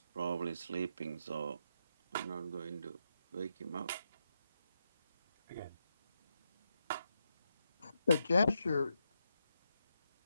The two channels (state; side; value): inverted; both; correlation -0.84